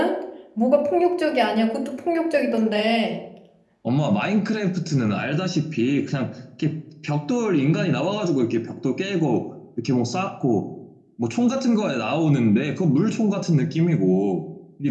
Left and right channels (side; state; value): both; identical; correlation 1.00